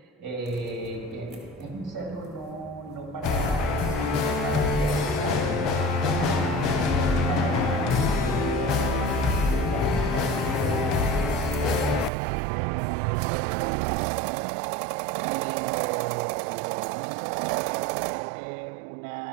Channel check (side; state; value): left; drops out; at 12.1 s